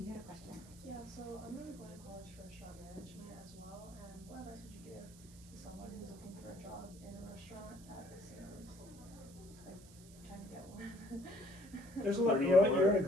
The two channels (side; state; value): right; noise; hiss, 21 dB below the sound